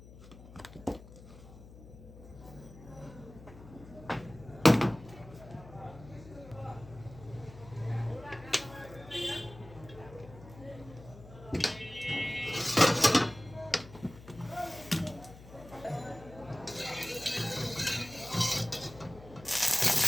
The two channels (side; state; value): left; noise; hum, 18 dB below the sound